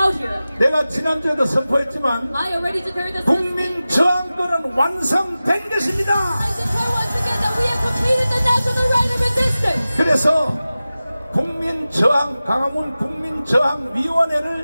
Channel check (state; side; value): inverted; both; correlation -0.96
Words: 내가 지난주에도 선포했지만 국민 저항권은 완성된 것입니다. 그래서 국민 저항, 강화문 국민 저항